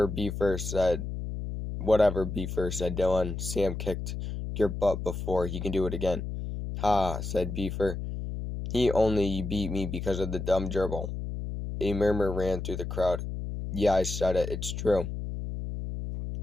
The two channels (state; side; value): noise; left; hum, 5 dB below the sound